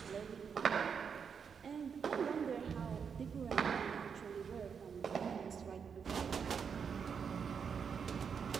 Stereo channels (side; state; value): left; quieter; 6.6 dB